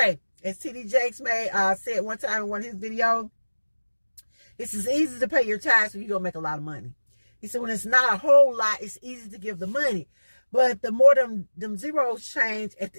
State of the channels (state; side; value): inverted; both; correlation -1.00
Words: As T.D. Jakes said one time in one of his videos, it's as easy to pay your tithes when you're going to make a lot of money. He said when it's not a whole lot, it's easy to give the money. But the more them zeros change at